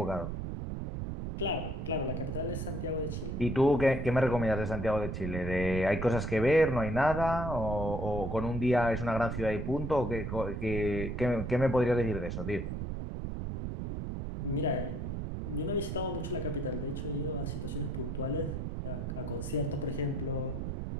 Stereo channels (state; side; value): noise; right; rumble, 4 dB below the sound